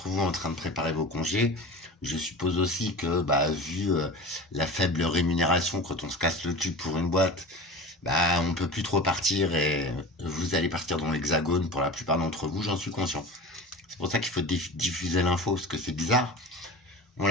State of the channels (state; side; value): normal; both; correlation 0.33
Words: vous, en train de préparer vos congés. Je suppose aussi que, vu la faible rémunération quand on se casse le cul pour une boîte, on peut plus trop partir et vous allez partir dans l'hexagone pour la plupart d'entre vous, j'en suis conscient. C'est pour ça qu'il faut diffuser l'info, parce que c'est bizarre. On